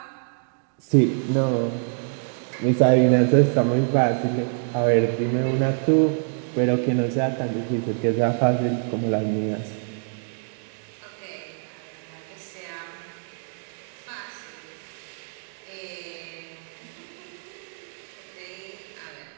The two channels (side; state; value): left; silent; 62 dB below the other